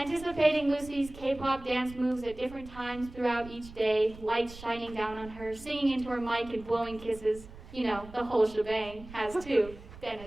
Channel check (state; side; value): noise; right; rumble, 17 dB below the sound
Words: Lucy's K-pop dance moves at different times throughout each day, lights shining down on her, singing into her mic and blowing kisses, you know, the whole shebang, has too been